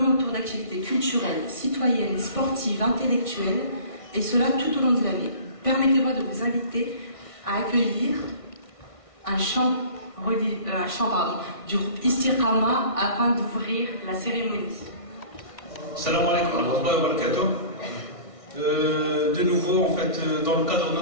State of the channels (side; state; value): right; late; 1.5 ms